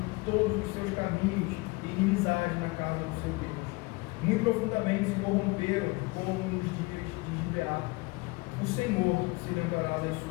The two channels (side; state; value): right; quieter; 24.9 dB